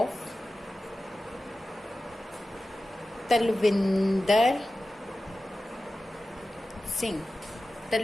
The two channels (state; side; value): normal; both; correlation 0.94